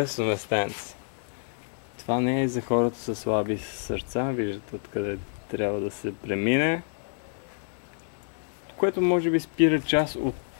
местенце? Това не е за хората със слаби сърца, виждате откъде трябва да се премине. Което може би спира част от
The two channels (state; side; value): silent; right; 59 dB below the other